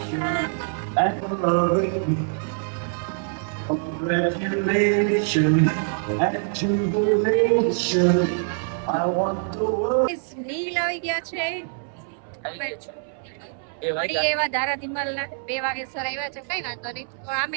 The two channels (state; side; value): silent; left; 62 dB below the other